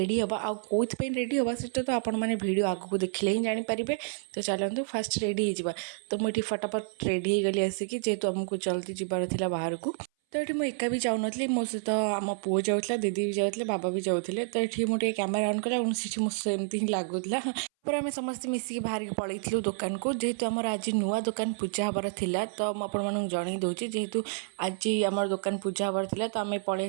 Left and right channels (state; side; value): silent; left; 58 dB below the other